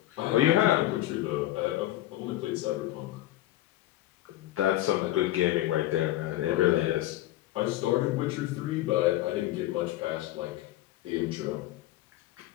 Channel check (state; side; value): quieter; right; 15.1 dB